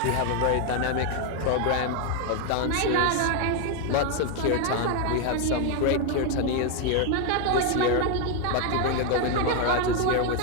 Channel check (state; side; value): different; both; correlation 0.01